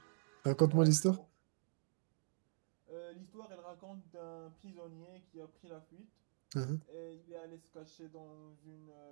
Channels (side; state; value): left; silent; digital silence